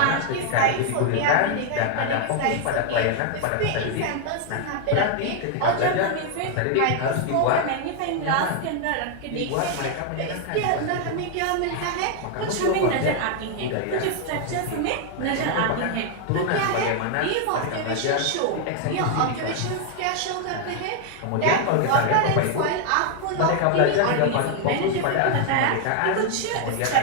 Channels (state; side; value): different; both; correlation 0.00